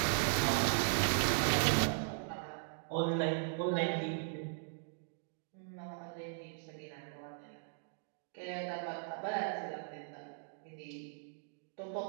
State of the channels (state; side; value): silent; left; digital silence